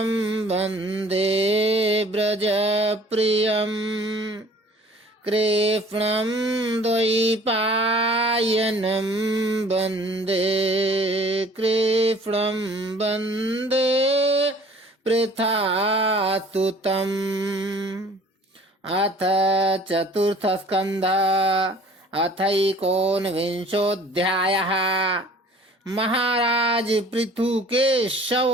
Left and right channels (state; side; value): normal; both; correlation 0.51